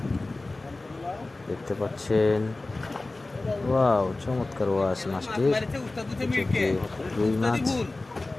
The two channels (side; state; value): right; quieter; 3.1 dB